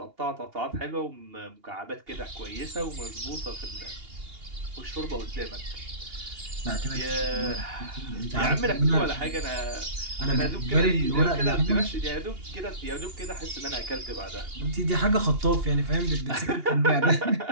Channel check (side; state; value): left; late; 2.8 ms